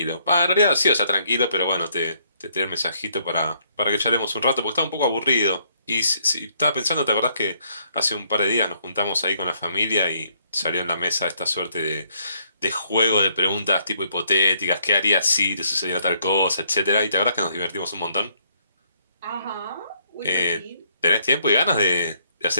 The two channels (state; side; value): inverted; both; correlation -0.69